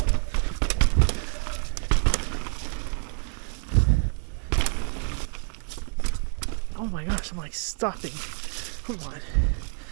Oh my gosh, I'm like stopping. Come on.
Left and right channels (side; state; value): left; silent; 55 dB below the other